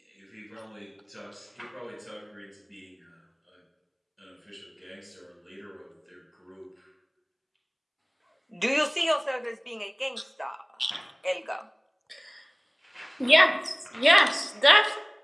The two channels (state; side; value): identical; both; correlation 1.00